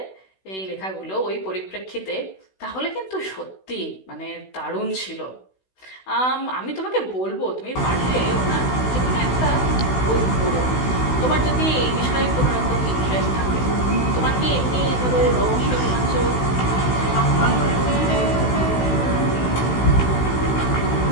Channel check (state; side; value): late; right; 16 ms